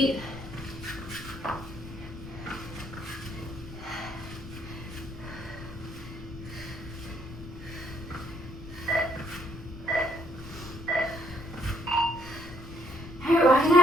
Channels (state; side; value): noise; left; rumble, 13 dB below the sound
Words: All right, walk it